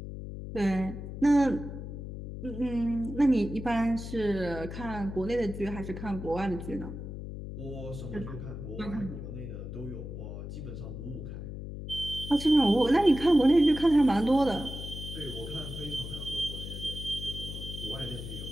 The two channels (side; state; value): left; noise; hum, 8 dB below the sound